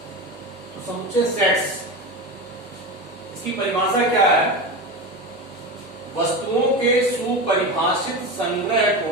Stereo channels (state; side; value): normal; both; correlation 0.23